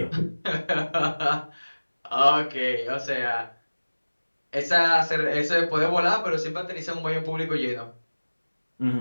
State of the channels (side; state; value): both; inverted; correlation -1.00